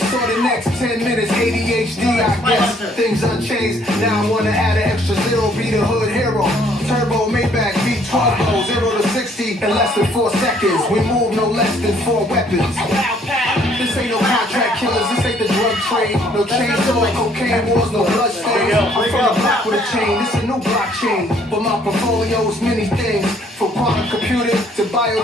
the next 10 minutes. ADHD I guess. Things unchanged. Now I wanna add an extra zero. Be the hood hero. Turbo Maybach V12 0 to 60 in less than 4 seconds. We move no less than 4 weapons. This ain't no contract killers, this ain't the drug trade. No chainsaw, cocaine wars, no blood stains. I'm from the block with a chain, this a new blockchain. But my portfolio is many things. From quantum computing to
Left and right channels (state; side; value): normal; both; correlation 0.63